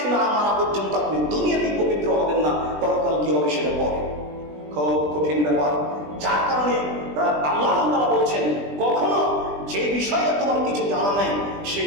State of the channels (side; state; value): left; late; 20 ms